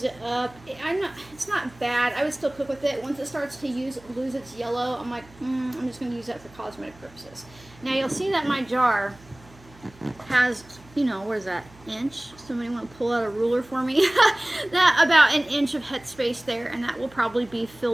it up. It's not bad. I would still cook with it. Once it starts to lose its yellow, I'm like, I'm just going to use that for cosmetic purposes. Now you'll see that my jar has, you know, what is that, inch? Somebody want to pull out a ruler for me? That about an inch of headspace there, and that will probably be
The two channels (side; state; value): right; noise; hum, 24 dB below the sound